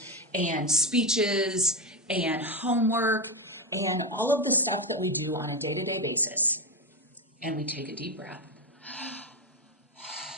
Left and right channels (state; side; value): normal; both; correlation 0.13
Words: and speeches and homework and all of the stuff that we do on a day-to-day basis. And we take a deep breath.